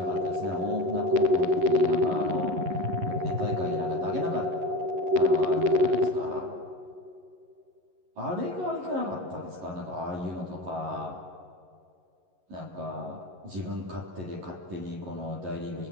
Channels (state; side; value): late; left; 11 ms